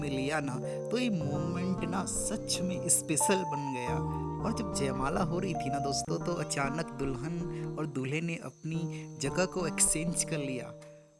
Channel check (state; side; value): identical; both; correlation 1.00